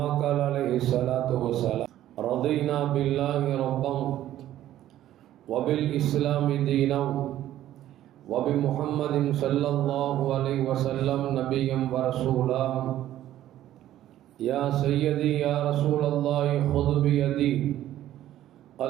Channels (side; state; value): left; quieter; 12.9 dB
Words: قال عليه الصلاة والسلام. رضينا بالله ربا وبالإسلام دينا وبمحمد صلى الله عليه وسلم نبيا ورسولا. يا سيدي يا رسول الله خذ بيدي